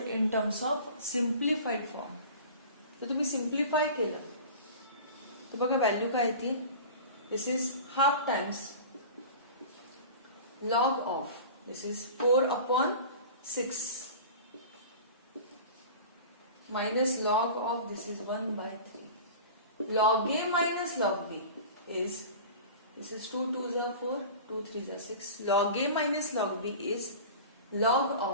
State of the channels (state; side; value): inverted; both; correlation -0.37